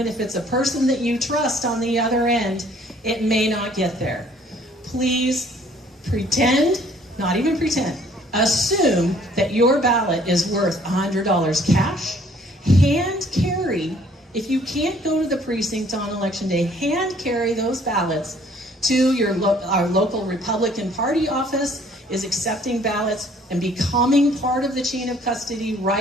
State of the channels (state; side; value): normal; both; correlation 0.59